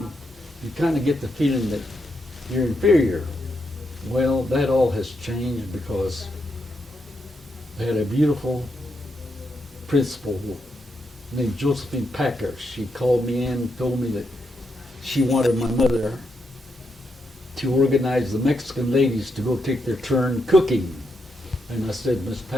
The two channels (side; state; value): both; normal; correlation 0.82